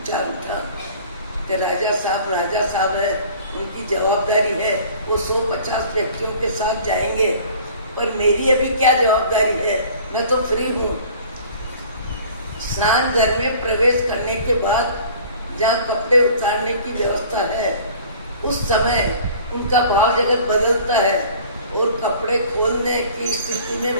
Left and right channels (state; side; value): inverted; both; correlation -0.48